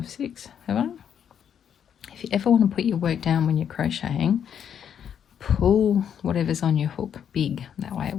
6. Have I? If you ever want to put your work down when you're crocheting, pull whatever's on your hook big. That way it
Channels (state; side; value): quieter; right; 8.5 dB